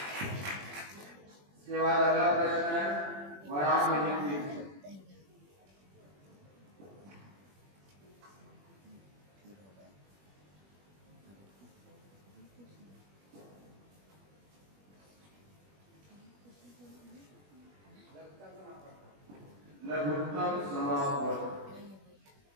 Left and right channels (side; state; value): left; late; 21 ms